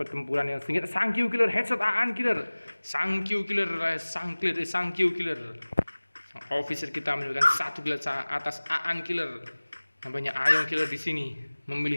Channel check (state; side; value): inverted; both; correlation -1.00